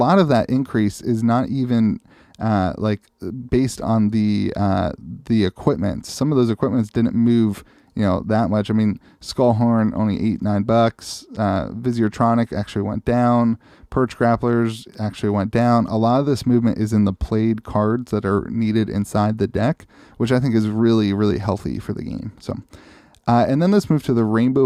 of that increase is not even based on the equipment. Some of those equipments didn't move that much. I mean, Skullhorn only $8-9. Visiotronic actually went down. Perch Grapplers actually went down. A lot of this movement is in the played cards that are needed inside the deck, which I think is really, really healthy for the game. So, and then let's move to the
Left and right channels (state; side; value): identical; both; correlation 1.00